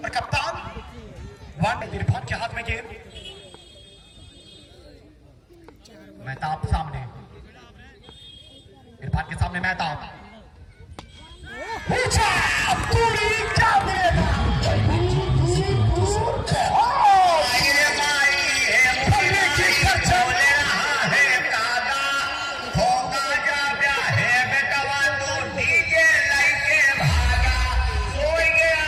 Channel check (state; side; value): identical; both; correlation 1.00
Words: और कप्तान इरफान के हाथ में गेंद। मेहताब सामने, इरफान के सामने मेहताब पूरी क्या मिलेगा।